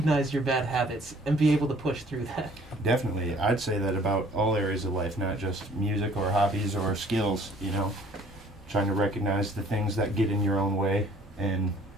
your bad habits and be able to push through that. Definitely. I'd say that about all areas of life, not just music or hobbies or skills, you know. Trying to recognize the things that get in your own way and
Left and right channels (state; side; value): normal; both; correlation 0.55